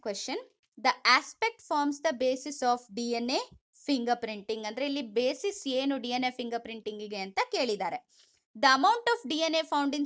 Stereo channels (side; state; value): both; identical; correlation 1.00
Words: question. The aspect forms the basis of DNA fingerprinting. ಅಂದ್ರೆ ಇಲ್ಲಿ basis ಏನು DNA fingerprinting ಗೆ ಅಂತ ಕೇಳಿದ್ದಾರೆ. The amount of DNA found in